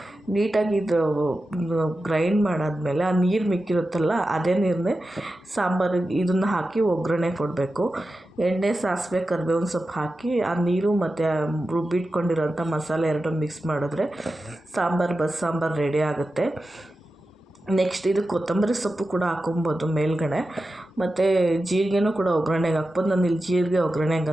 ನೀಟಾಗಿ ಇದು ಗ್ರೈಂಡ್ ಮಾಡಾದ್ಮೇಲೆ ಆ ನೀರು ಮಿಕ್ಕಿರುತ್ತಲ್ಲ ಅದೇ ನೀರನ್ನೇ ಸಾಂಬಾರಿಗೆ ಇದನ್ನು ಹಾಕಿ ಒಗ್ಗರಣೆ ಕೊಡಬೇಕು. ಎಣ್ಣೆ, ಸಾಸಿವೆ, ಕರಿಬೇವಿನ ಸೊಪ್ಪು ಹಾಕಿ ಆ ನೀರು ಮತ್ತು ರುಬ್ಬಿಟ್ಕೊಂಡಿರೋಂಥ ಮಸಾಲೆ ಎರಡು ಮಿಕ್ಸ್ ಮಾಡಿದ್ರೆ ಬಸ್ಸಾಂಬಾರು ರೆಡಿ ಆಗುತ್ತೆ. ನೆಕ್ಸ್ಟ್ ಇದು ಕೊತ್ತಂಬರಿ ಸೊಪ್ಪು ಕೂಡ ಹಾಕೊಬೋದು ಮೇಲ್ಗಡೆ, ಮತ್ತು ಜೀರಿಗೆನೂ ಕೂಡ ಒಗ್ಗರಣೆಗೆ ಹಾಕ್ಬೋದು. ನಾನು ಇಲ್ಲಿ ಜೀರಿಗೆ ಒಗ್ಗರಣೆಗೆ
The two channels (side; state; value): both; normal; correlation 0.92